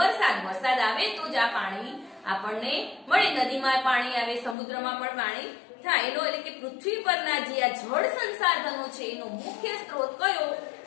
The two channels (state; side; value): drops out; right; at 4.5 s